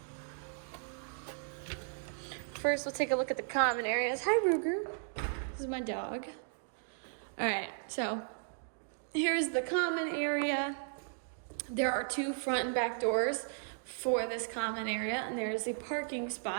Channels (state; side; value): silent; left; digital silence